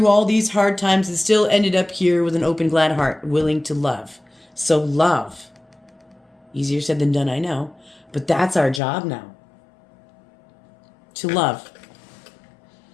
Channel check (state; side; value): drops out; right; at 8.8 s